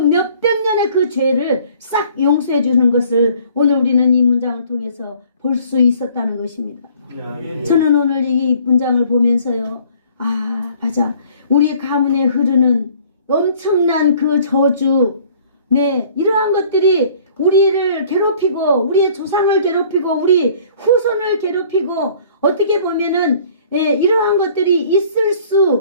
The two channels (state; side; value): inverted; both; correlation -0.55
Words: 년의 그 죄를 싹 용서해 주는 것을 오늘 우리는 이 문장을 통해서 볼 수 있었다는 것입니다. 저는 오늘 이 문장을 보면서요, 아, 맞아, 우리 가문에 흐르는 엄청난 그 저주, 네, 이러한 것들이 우리를 괴롭히고 우리의 조상을 괴롭히고 우리 후손을 괴롭히고 어떻게 보면은 이러한 것들이 있을